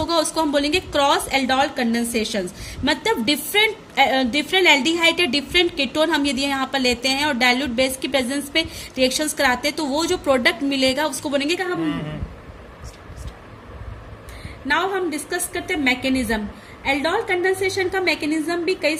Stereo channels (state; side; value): identical; both; correlation 1.00